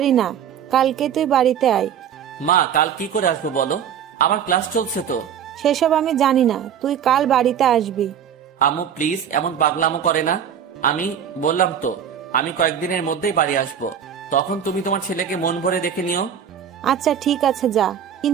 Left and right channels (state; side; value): quieter; left; 8.6 dB